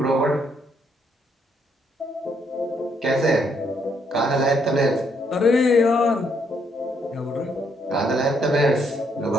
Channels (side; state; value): both; normal; correlation 0.72